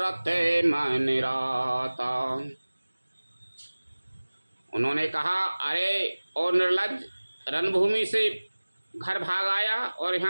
मन राता। उन्होंने कहा, अरे और निर्लज, रणभूमि से घर भाग आया और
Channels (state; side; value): inverted; both; correlation -1.00